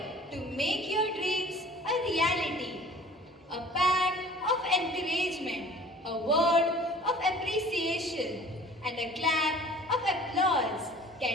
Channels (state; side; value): normal; both; correlation 0.48